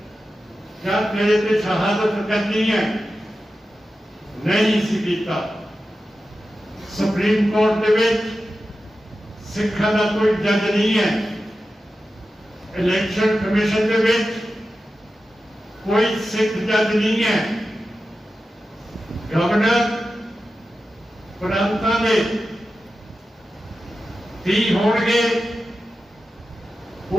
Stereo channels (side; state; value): both; normal; correlation 0.92